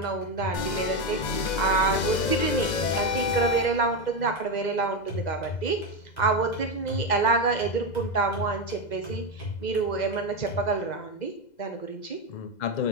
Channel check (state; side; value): late; right; 2.0 ms